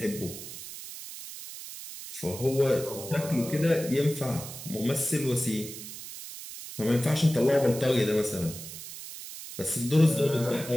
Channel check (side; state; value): right; noise; hiss, 11 dB below the sound